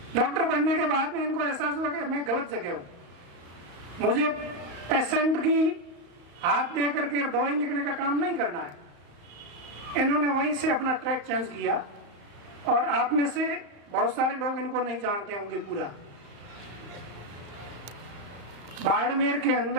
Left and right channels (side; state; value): left; late; 35 ms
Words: डॉक्टर बनने के बाद में इनको एहसास हुआ कि मैं गलत जगह हूं, मुझे पेशेंट की हाथ दे करके दवाई लिखने का काम नहीं करना है। इन्होंने वहीं से अपना ट्रैक चेंज किया, और आप में से बहुत सारे लोग इनको नहीं जानते होंगे पूरा। बाड़मेर के